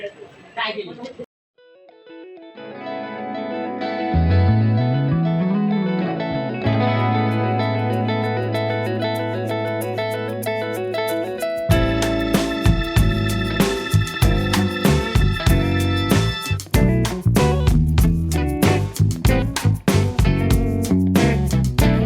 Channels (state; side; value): identical; both; correlation 1.00